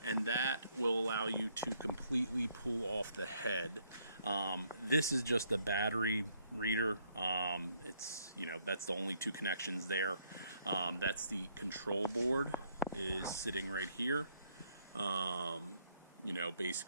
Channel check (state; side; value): inverted; both; correlation -0.70